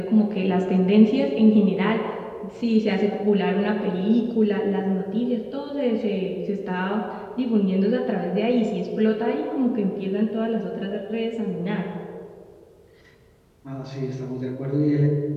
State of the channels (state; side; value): identical; both; correlation 1.00